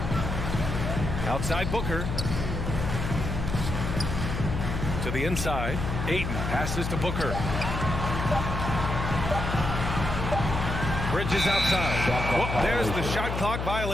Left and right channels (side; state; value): left; noise; hum, 3 dB below the sound